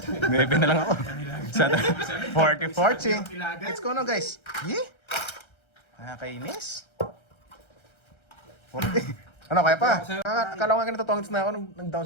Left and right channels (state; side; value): late; right; 1.3 ms